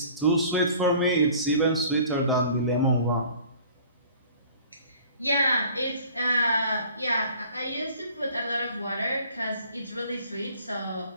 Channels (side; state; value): both; inverted; correlation -0.50